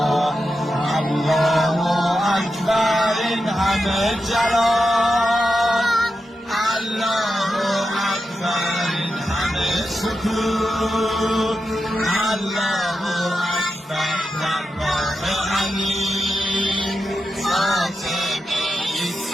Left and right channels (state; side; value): normal; both; correlation 0.89